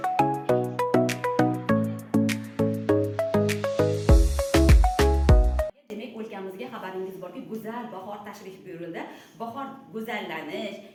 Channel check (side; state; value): both; identical; correlation 1.00